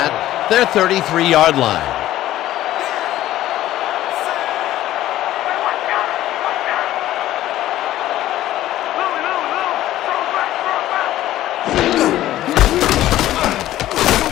their 33-yard line.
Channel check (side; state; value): right; quieter; 14.1 dB